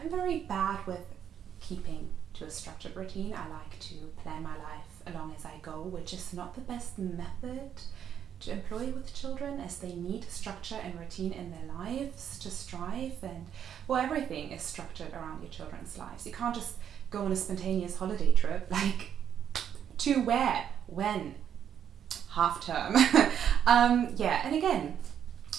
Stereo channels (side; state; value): left; quieter; 8.9 dB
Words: very bad with keeping to a structured routine. I like to plan my life along as I go, which is not the best method to employ with children, as they need structure and routine in their lives to strive. And well, everything is structured around your children's lives. You can't just go on a spontaneous holiday trip, like to where, when, half term. Yeah, and again,